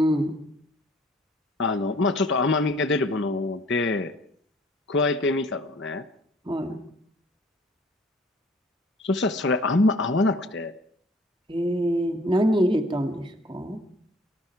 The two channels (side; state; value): both; normal; correlation 0.53